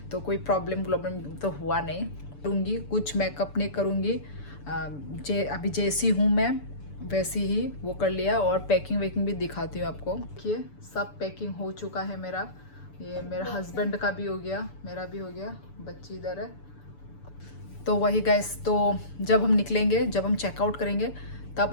तो कोई प्रॉब्लम तो हुआ नहीं। करूँगी कुछ मेकअप नहीं करूँगी, अभी जैसी हूँ मैं वैसी ही वो कर लिया। और पैकिंग वैकिंग भी दिखाती हूँ आपको। देखिए सब पैकिंग हो चुका है मेरा। ये मेरा हस्बैंड का भी हो गया, मेरा भी हो गया, बच्ची इधर है। तो वही गाइस, तो जब हम निकलेंगे, जब हम चेकआउट करेंगे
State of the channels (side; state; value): right; late; 6.9 ms